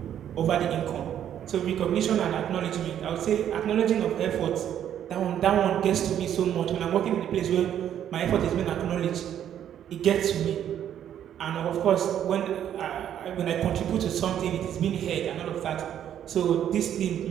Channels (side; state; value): left; quieter; 10.1 dB